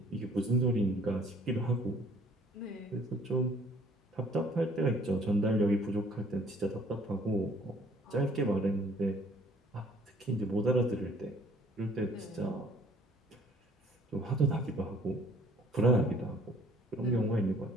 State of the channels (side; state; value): both; normal; correlation 0.58